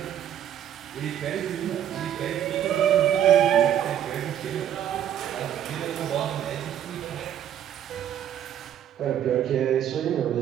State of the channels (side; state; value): left; quieter; 10.3 dB